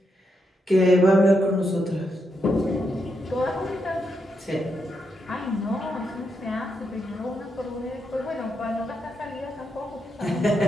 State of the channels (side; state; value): both; normal; correlation 0.82